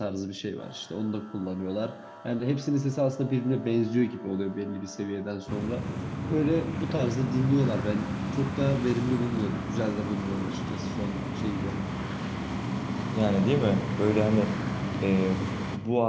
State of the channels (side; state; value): both; identical; correlation 1.00